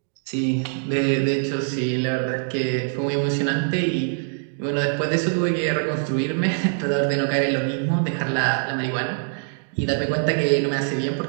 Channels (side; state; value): left; silent; digital silence